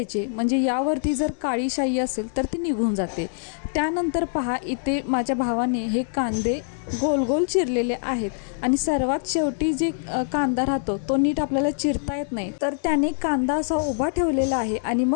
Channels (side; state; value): right; silent; digital silence